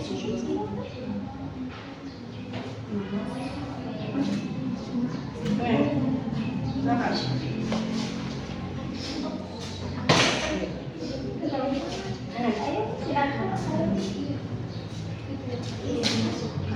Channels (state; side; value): identical; both; correlation 1.00